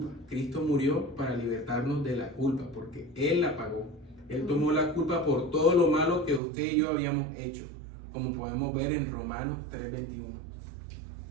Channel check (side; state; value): left; drops out; at 6.4 s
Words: Cristo murió para libertarnos de la culpa, porque Él la pagó. Él tomó la culpa por todo lo malo que usted y yo habíamos hecho, como podemos ver en Romanos 3:21.